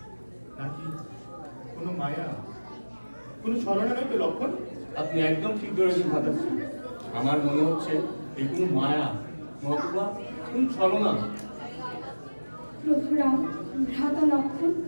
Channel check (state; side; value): inverted; both; correlation -1.00